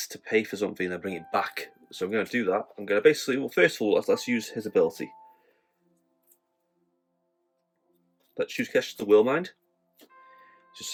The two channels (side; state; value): both; identical; correlation 1.00